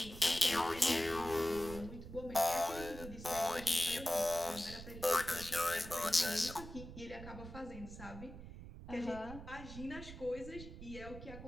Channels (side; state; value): right; noise; rumble, 12 dB below the sound